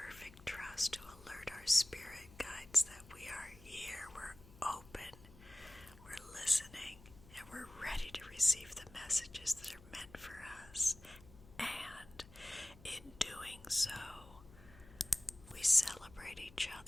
trust, to alert our spirit guides that we are here. We're open, we're listening, and we're ready to receive the messages that are meant for us. And in doing so, we celebrate each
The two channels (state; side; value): noise; left; hum, 21 dB below the sound